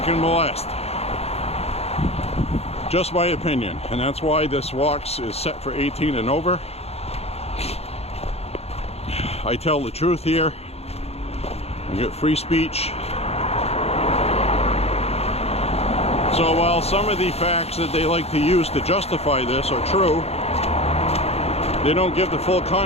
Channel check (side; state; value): right; late; 0.30 ms